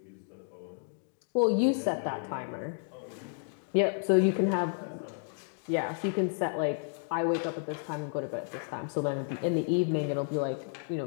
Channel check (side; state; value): right; silent; digital silence